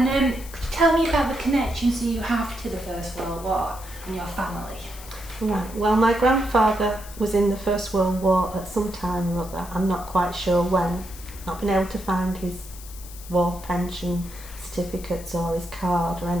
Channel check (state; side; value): noise; left; hiss, 17 dB below the sound